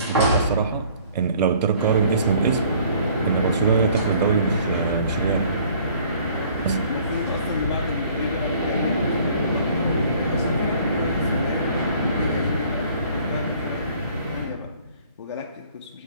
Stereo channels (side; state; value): both; inverted; correlation -0.56